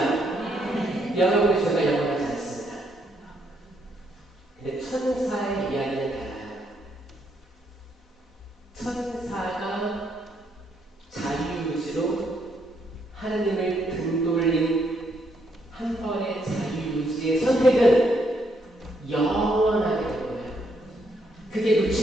여러분의 죄가 영원하지 않습니다. 근데 천사의 이야기는 달라요. 천사가 자유유지로 하나님을 등돌린 한 번의 자유유지의 선택은 영원하게 될 거예요. 그게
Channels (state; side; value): normal; both; correlation 0.74